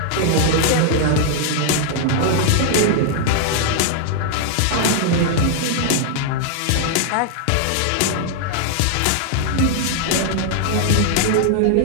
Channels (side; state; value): both; different; correlation 0.00